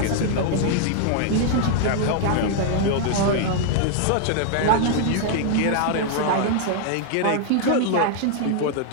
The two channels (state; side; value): different; both; correlation -0.01